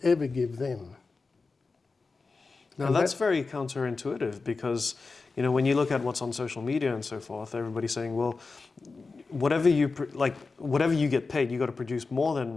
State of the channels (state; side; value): quieter; right; 4.1 dB